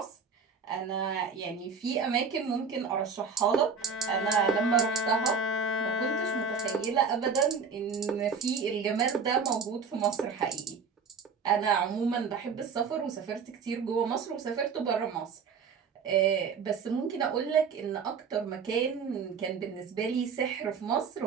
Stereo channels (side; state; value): left; quieter; 5.7 dB